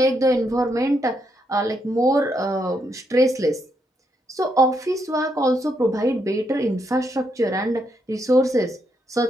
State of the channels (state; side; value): normal; both; correlation 0.78